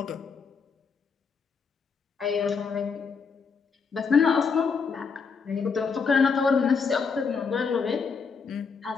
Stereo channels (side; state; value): right; quieter; 5.5 dB